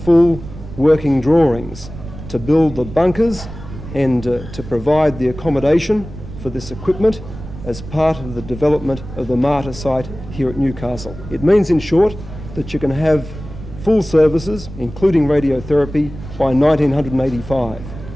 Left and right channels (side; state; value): right; noise; rumble, 13 dB below the sound